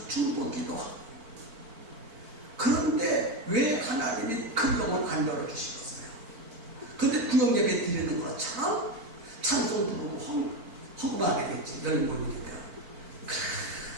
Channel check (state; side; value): late; left; 4.5 ms